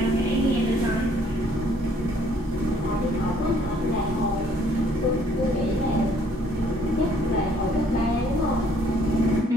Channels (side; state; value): both; normal; correlation 0.63